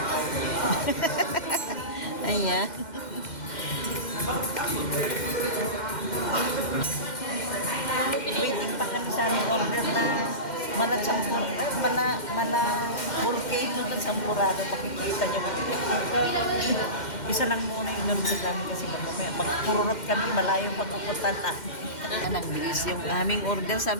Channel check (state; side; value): late; right; 2.1 ms